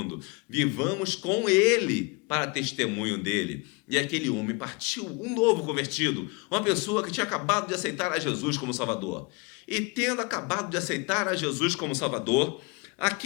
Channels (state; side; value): quieter; right; 28.4 dB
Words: Vivamos com Ele para testemunho dele. E aquele homem partiu, um novo convertido, uma pessoa que tinha acabado de aceitar a Jesus como Salvador. E tendo acabado de aceitar a Jesus como Salvador,